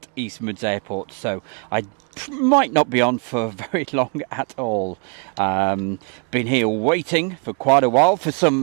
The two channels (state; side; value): quieter; left; 37.1 dB